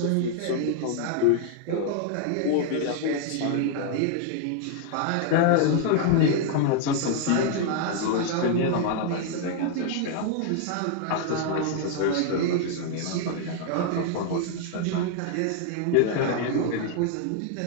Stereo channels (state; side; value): different; both; correlation 0.00